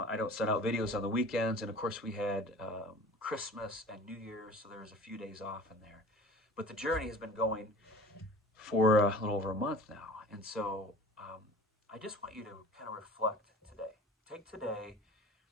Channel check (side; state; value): both; normal; correlation 0.42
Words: I don't send out videos on the weekends, and of course we had Christmas and New Year's, so there was a few days off in there. But the journey has been going for a little over a month now, and so I just want you to kind of reflect today. Take today